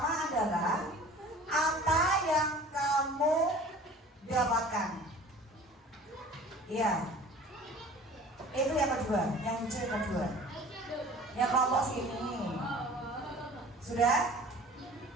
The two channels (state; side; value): normal; both; correlation 0.45